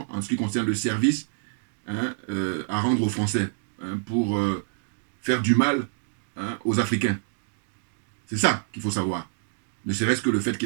en ce qui concerne le service à rendre aux Français, pour faire du mal aux Africains. C'est ça qu'il faut savoir. Ne serait-ce que le fait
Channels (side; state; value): left; silent; digital silence